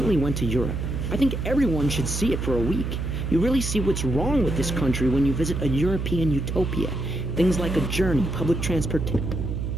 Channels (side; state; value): right; noise; hum, 3 dB below the sound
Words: went to Europe. I think everyone should see it for a week. You really see what's wrong with this country when you visit a European utopia. Things like a journey, public transportation.